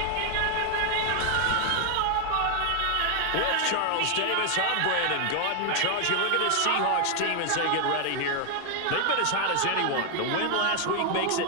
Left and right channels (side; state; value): both; different; correlation 0.00